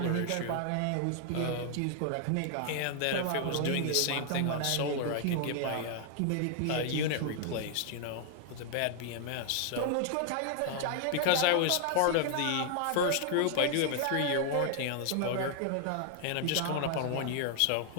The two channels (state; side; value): different; both; correlation 0.00